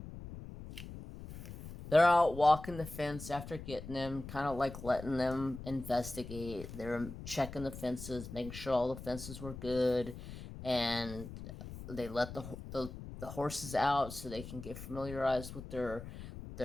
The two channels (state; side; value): noise; left; rumble, 11 dB below the sound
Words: they're out walking the fence after getting them, kind of like letting them investigate. They're checking the fences, making sure all the fences were good. And they let the horses out so they can get familiarized with their